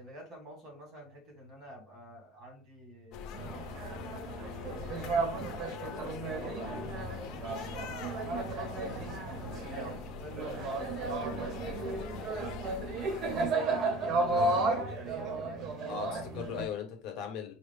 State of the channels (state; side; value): normal; both; correlation 0.41